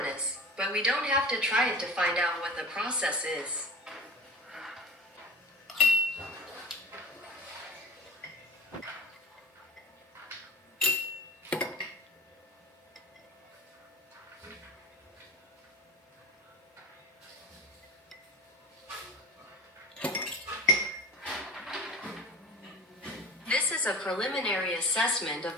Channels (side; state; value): both; normal; correlation 0.36